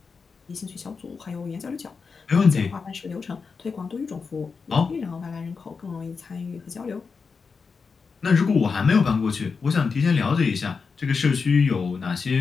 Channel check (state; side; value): quieter; right; 5.1 dB